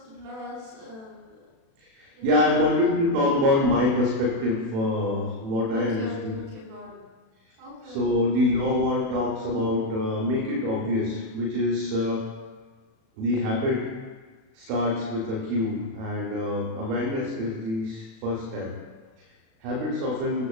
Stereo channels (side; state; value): left; late; 36 ms